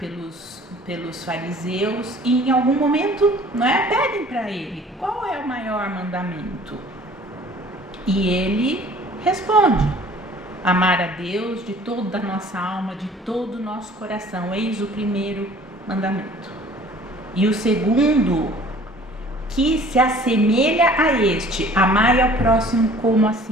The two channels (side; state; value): both; normal; correlation 0.51